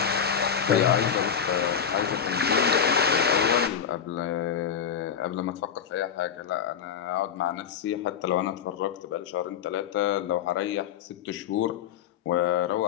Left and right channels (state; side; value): quieter; right; 7.9 dB